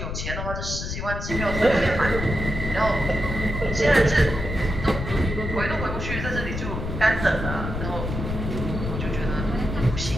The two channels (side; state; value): left; noise; rumble, 4 dB below the sound